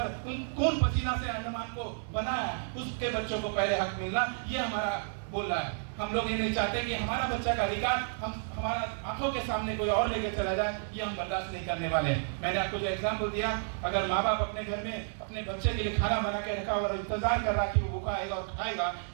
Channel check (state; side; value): silent; left; 57 dB below the other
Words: खून पसीना से अंडमान को बनाया, उसके बच्चों को पहले हक मिलना, ये हमारा बोल रहा है। हम लोग ये नहीं चाहते कि हमारा बच्चा का अधिकार हमारा आंखों के सामने कोई और लेके चला जाए, ये हम बर्दाश्त नहीं करने वाले। मैंने आपको जो एग्जाम्पल दिया, अगर माँ बाप अपने घर में अपने बच्चे के लिए खाना बना के रखा और इंतजार कर रहा कि वो भूखा आएगा और खाएगा,